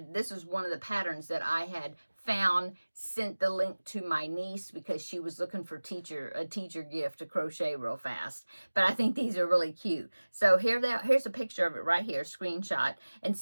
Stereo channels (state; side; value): inverted; both; correlation -1.00